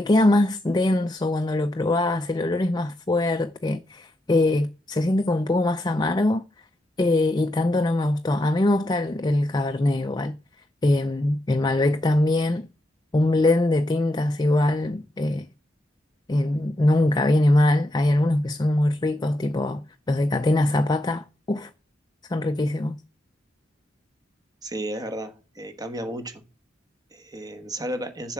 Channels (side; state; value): both; normal; correlation 0.82